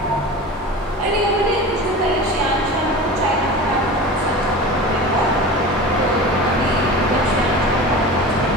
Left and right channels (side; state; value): both; normal; correlation 0.33